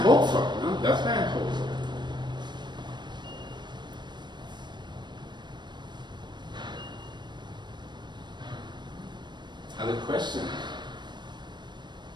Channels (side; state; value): left; late; 0.22 ms